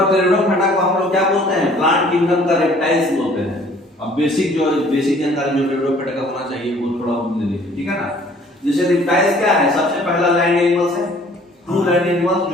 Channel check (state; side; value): normal; both; correlation 0.55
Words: टेरिडोफाइटा को हम लोग क्या बोलते हैं, प्लांट किंगडम का रेप्टाइल्स बोलते हैं। अब बेसिक जानकारी जो टेरिडोफाइटा का होना चाहिए वो थोड़ा ले लीजिए, ठीक है ना। जैसे रेप्टाइल्स क्या है, सबसे पहला लैंड एनिमल्स है, ट्रू लैंड एनिमल्स,